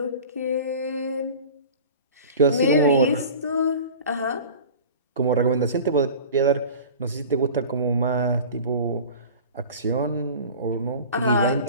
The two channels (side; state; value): both; inverted; correlation -0.38